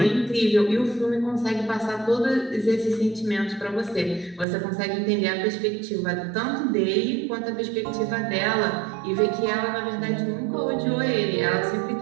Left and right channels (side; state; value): left; drops out; at 4.5 s